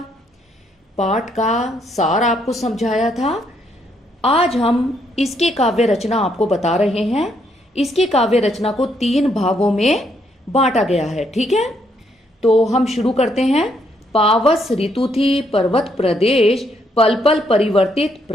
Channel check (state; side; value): normal; both; correlation 0.73